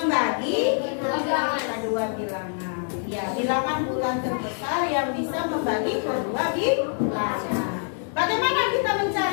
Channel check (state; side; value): silent; right; 57 dB below the other